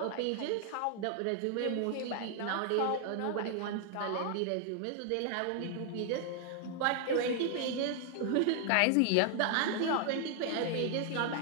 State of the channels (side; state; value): both; different; correlation 0.00